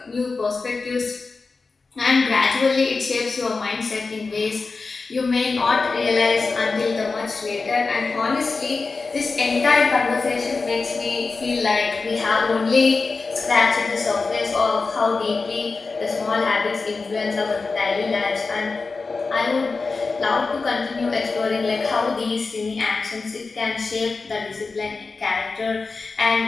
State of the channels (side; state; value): right; quieter; 4.2 dB